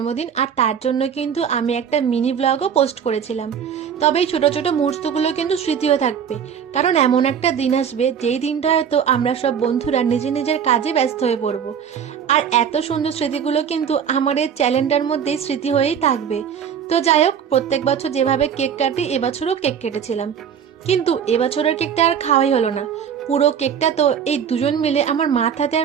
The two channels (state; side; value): quieter; left; 7.9 dB